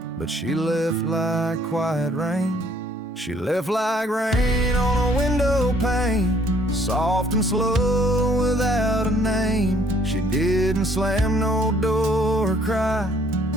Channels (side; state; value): both; normal; correlation 0.62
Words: but she left like quiet rain. She left like rain on a window pane, soft and slow without a name. She didn't slam no door or cry,